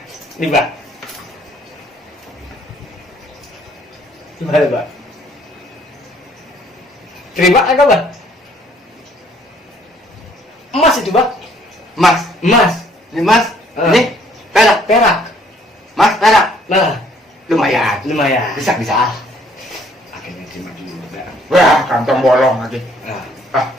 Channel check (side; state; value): both; normal; correlation 0.62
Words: Nih, Bah. Gimana, Bah? Terima kagak, Bah? Emas itu, Bah. Mas, Emas. ini mas, Ah. ini perak, Perak. mas perak, Nah, lumayan. lumayan. Bisa. Akhirnya terima dulu, Bah. Wah, kantong bolong lagi. Nah, Ah,